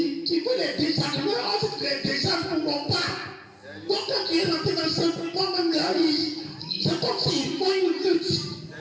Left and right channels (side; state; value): both; identical; correlation 1.00